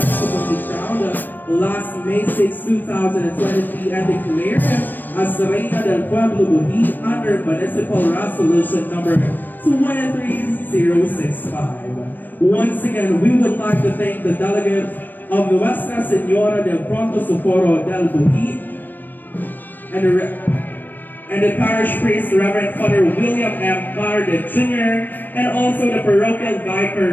crowned last May 6, 2023 and declared as the Reina del Pueblo Buhi under Municipal Resolution number 23065. Once again, we would like to thank the delegates of Nuestra Señora del Pronto Socorro del Buhi and the parish priest, Reverend Father William M. Carde Jr., and also the parochial vicar,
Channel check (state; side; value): late; right; 0.091 ms